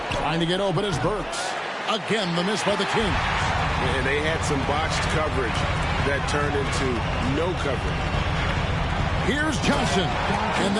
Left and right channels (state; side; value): identical; both; correlation 1.00